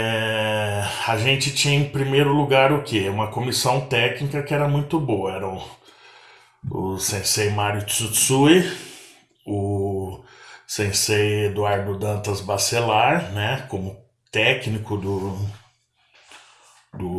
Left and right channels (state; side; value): identical; both; correlation 1.00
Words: a gente tinha em primeiro lugar o quê? Uma comissão técnica que era muito boa. Era o Sensei Mário Tsutsui, o Sensei Eduardo Dantas Bacelar, né, como técnico do